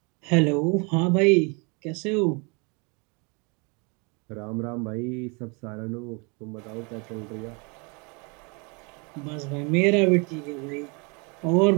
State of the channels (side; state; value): left; quieter; 31.9 dB